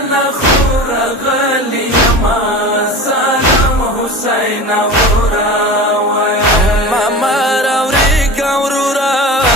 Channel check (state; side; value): normal; both; correlation 0.33